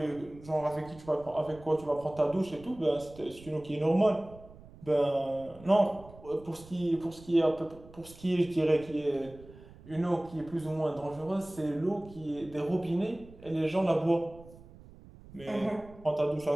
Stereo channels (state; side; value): noise; right; rumble, 20 dB below the sound